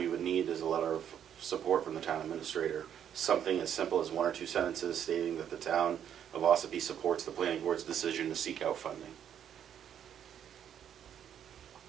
would need is a letter of support from the town administrator. Something as simple as 1 or 2 sentences stating that the town of Ossipee supports the planning board's decision to seek out funding.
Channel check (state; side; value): quieter; left; 9.3 dB